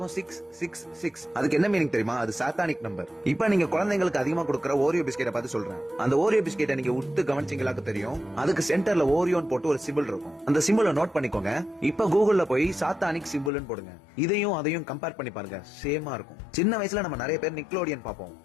666. அதுக்கு என்ன மீனிங் தெரியுமா? அது சாத்தானிக் நம்பர். இப்ப நீங்க குழந்தைங்களுக்கு அதிகமா கொடுக்குற ஓரியோ பிஸ்கெட்டை பார்த்து சொல்றேன். அந்த ஓரியோ பிஸ்கெட்டை நீங்க உத்து கவனிச்சீங்களாக்கு தெரியும். அதுக்கு சென்டர்ல ஓரியோன் போட்டு ஒரு சிம்பிள் இருக்கும். அந்த சிம்பிள் நோட் பண்ணிக்கோங்க. இப்ப கூகுள்ல போய் சாத்தானிக் சிம்பிள்னு போடுங்க. இதையும் அதையும் கம்பேர் பண்ணி பாருங்க. சேமா இருக்கும். சின்ன வயசுல நம்ம நிறைய பேர் நிக்லோடியன் பாப்போம்.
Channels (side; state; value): right; drops out; at 13.5 s